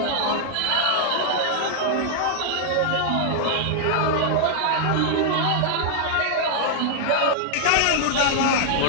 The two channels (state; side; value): different; both; correlation -0.01